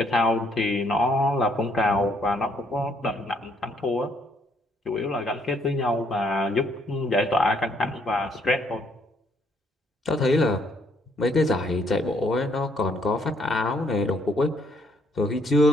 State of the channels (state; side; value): normal; both; correlation 0.69